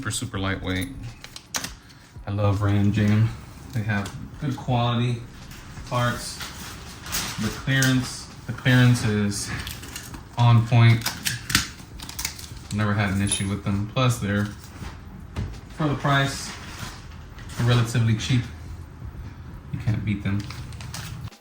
super lightweight. I love Ram Jam. They have good quality parts. The clearance is on point. Never had an issue with them. Plus, they're, for the price, they're relatively cheap. You can't beat them.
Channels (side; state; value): both; identical; correlation 1.00